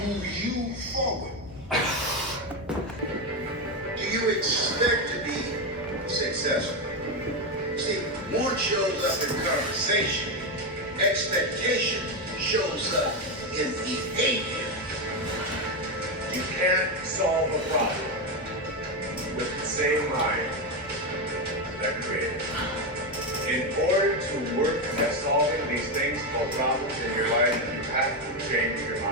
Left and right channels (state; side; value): normal; both; correlation 0.10